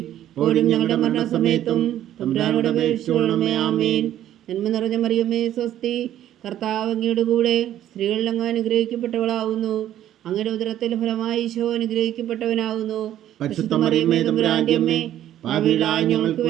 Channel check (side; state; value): left; quieter; 12.0 dB